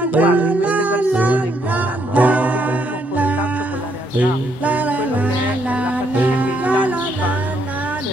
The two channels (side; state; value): right; late; 8.0 ms